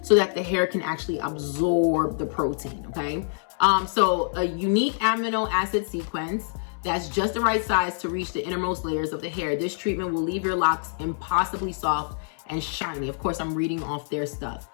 so that the hair can actually absorb the protein, okay? So a unique amino acid sequence that's just the right size to reach the innermost layers of the hair. This treatment will leave your locks impossibly soft and shiny. Of course, I'm reading off their stuff.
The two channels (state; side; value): silent; right; 60 dB below the other